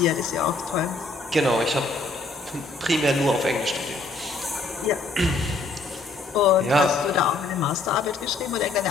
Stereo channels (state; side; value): quieter; right; 3.5 dB